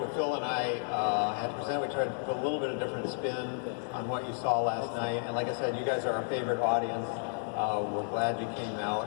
Phil and I had to present. We tried to put a little bit of different spin on what you saw last night. And like I said, you guys are our favorite audience. We're glad you came out,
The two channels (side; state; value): right; silent; digital silence